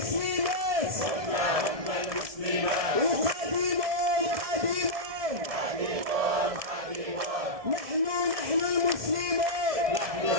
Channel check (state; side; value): late; left; 1.7 ms